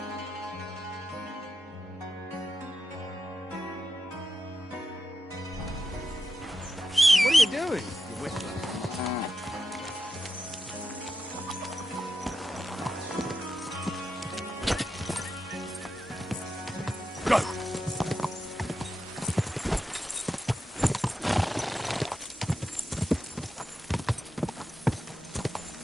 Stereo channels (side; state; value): both; normal; correlation 0.88